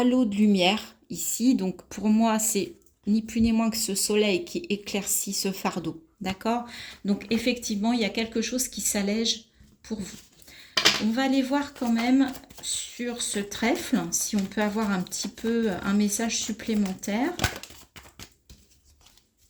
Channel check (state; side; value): identical; both; correlation 1.00